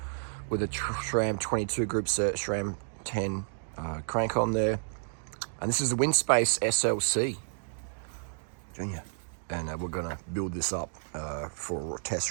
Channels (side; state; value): left; silent; digital silence